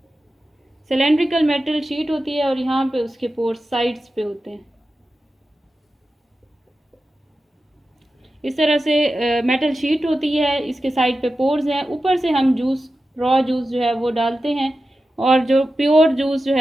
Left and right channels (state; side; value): normal; both; correlation 0.92